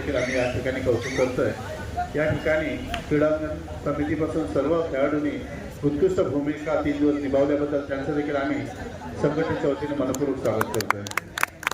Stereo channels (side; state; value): both; identical; correlation 1.00